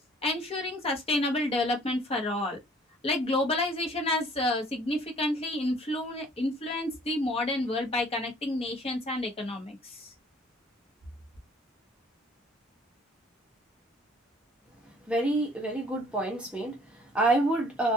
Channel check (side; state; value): both; normal; correlation 0.56